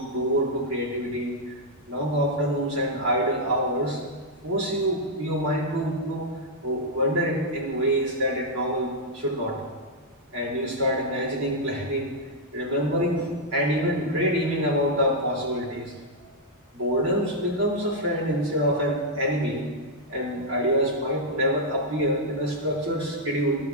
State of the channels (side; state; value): both; normal; correlation -0.04